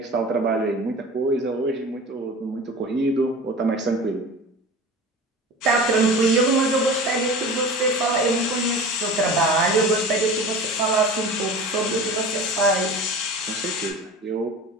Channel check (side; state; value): both; normal; correlation 0.36